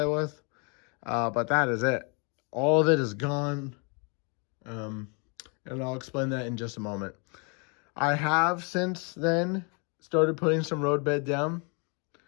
with. But that is it. All of it is gone. And I'll explain that in just a moment. I have since then started putting some road bed down.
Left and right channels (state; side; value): quieter; right; 34.6 dB